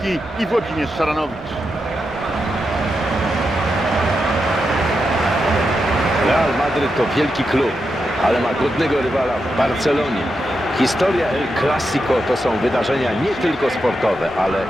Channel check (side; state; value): both; normal; correlation 0.86